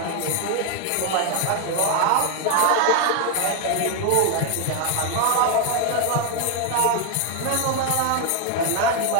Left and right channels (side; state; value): both; different; correlation 0.00